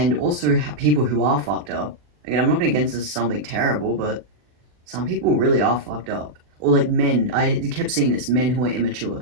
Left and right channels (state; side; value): late; left; 40 ms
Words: also, people who are fucked up. Again, I'm not going to get into something terrible, but some people really are fucked up. Or like men. I kept seeing this. Men who are